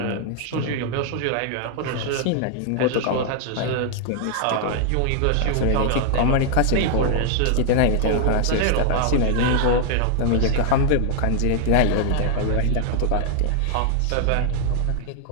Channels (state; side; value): different; both; correlation 0.00